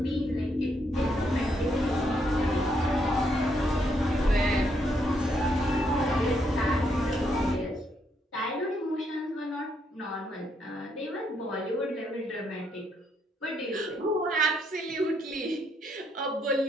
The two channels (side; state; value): both; normal; correlation 0.75